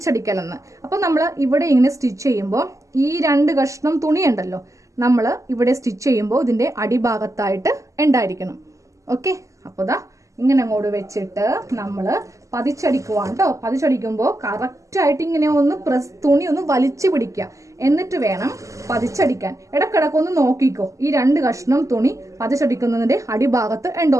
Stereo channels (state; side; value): late; left; 0.16 ms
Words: എന്ന്. അപ്പോൾ നമ്മൾ ഇവിടെ ഇങ്ങനെ സ്റ്റിച്ച് ചെയ്യുമ്പോൾ ഈ 2 കഷ്ണം തുണി ഉണ്ടല്ലോ, നമ്മൾ ഇവിടെ സ്റ്റിച്ച് ചെയ്യുമ്പോൾ ഇതിന്റെ അടിഭാഗത്തായിട്ട് ഉണ്ടായിരിക്കണം. ഓക്കെ, അപ്പോൾ ദാ ഇങ്ങനെ അങ്ങോട്ട് വെച്ചിട്ട് നമ്മൾ പതിച്ചടിക്കുവാണ് കേട്ടോ. പതിച്ചടിക്കുമ്പോൾ കറക്റ്റായിട്ട് ഇങ്ങനെ ഒന്ന് തുണി ഒന്ന് വലിച്ചു പിടിക്കുക. എന്നിട്ട് വേണം പതിച്ചടിക്കാൻ. ഇടക്കിടക്കൊന്ന് നോക്കിക്കോ ഈ 2 കഷ്ണം തുണി പതിച്ചടിക്കുന്നതിന്റെ അടിഭാഗത്ത്